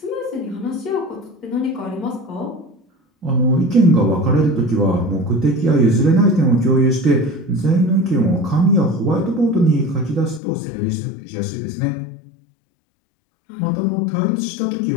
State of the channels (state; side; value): drops out; right; at 10.4 s